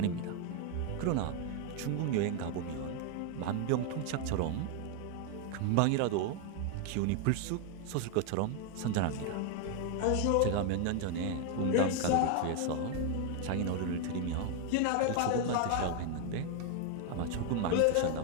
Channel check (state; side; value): different; both; correlation 0.01